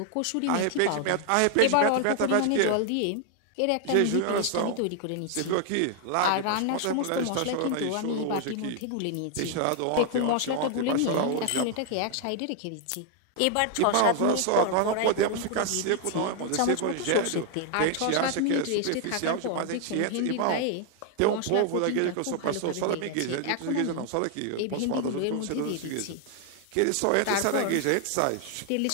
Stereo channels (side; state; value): both; different; correlation 0.00